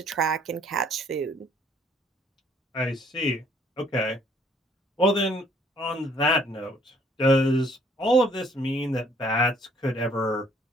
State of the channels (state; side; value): normal; both; correlation 0.61